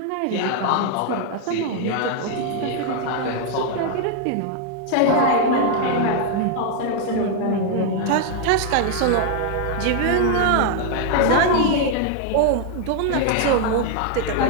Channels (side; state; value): both; different; correlation 0.00